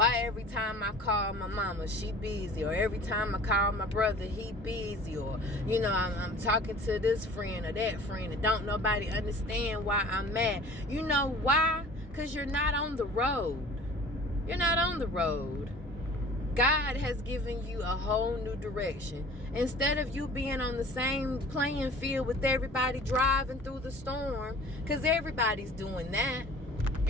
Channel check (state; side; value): normal; both; correlation 0.45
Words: every time I call my mama, she busy, or every time I call my brother, he busy, or I'm talking to this friend or that friend, and don't nobody understand why I'm mad. You know why? Because you're not on the road. You're not on the road. God has given you a whole new direction. Instead of you being on the same playing field with everybody driving through the storm, because everybody's doing that.